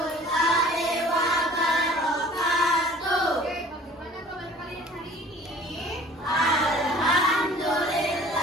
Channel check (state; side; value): normal; both; correlation 0.49